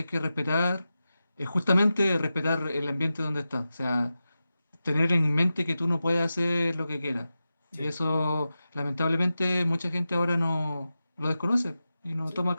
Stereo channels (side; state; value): both; inverted; correlation -0.93